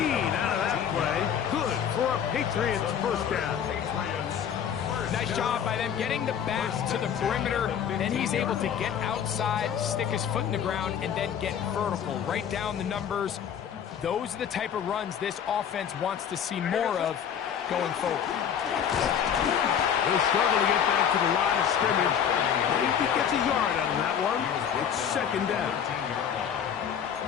out of that play. Good for a Patriots first down. Nice job by them getting the back to the perimeter. Then he's able to get outside, stick his foot in the ground, and then get vertical. Right down the numbers. Those are the type of runs this offense wants to see more of going forward. He'll struggle to get back to the line of scrimmage. Maybe gets a yard out of that one. It's 2nd down.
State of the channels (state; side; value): quieter; right; 8.4 dB